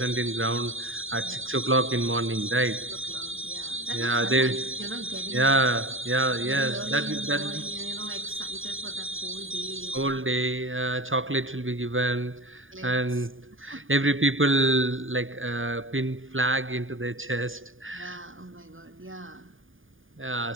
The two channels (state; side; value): late; left; 0.58 ms